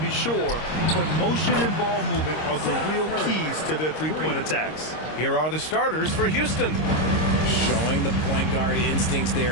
sure, but motion and ball movement are the real keys to their three-point attacks. Here are the starters for Houston. Showing the point guard instincts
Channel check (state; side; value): late; right; 26 ms